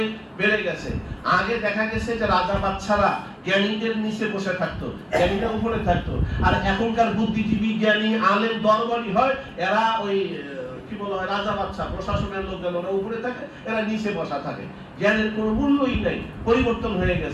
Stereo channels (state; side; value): identical; both; correlation 1.00